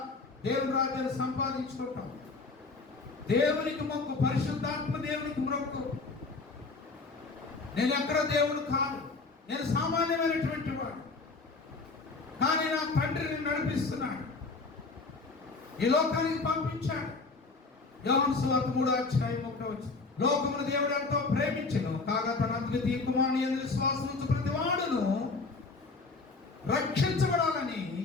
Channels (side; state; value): right; quieter; 3.9 dB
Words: దేవుని రాజ్యాన్ని సంపాదించుకుంటాం. దేవునికి మొక్కు, పరిశుద్ధాత్మ దేవునికి మొక్కు. నేను ఎక్కడ దేవుడు కాదు, నేను సామాన్యమైనటువంటి వాడు, కానీ నా తండ్రిని నడిపిస్తున్నాడు, ఈ లోకానికి పంపించాడు. యోహాను సువార్త 3:1 లోకమును దేవుడు ఎంతో ప్రేమించెను, కాగా తన అద్వితీయ కుమారుని యందు విశ్వాసం ఉంచు ప్రతి వాడును రక్షించబడాలని